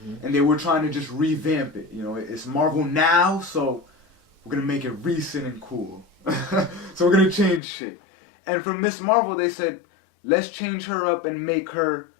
And they were trying to just revamp it. You know, it's Marvel Now, so we're going to make it recent and cool. So we're going to change shit. And for Miss Marvel, they said, let's change her up and make her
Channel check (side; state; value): right; drops out; at 7.6 s